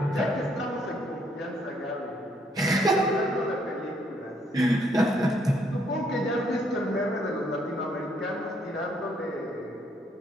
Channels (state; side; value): normal; both; correlation 0.70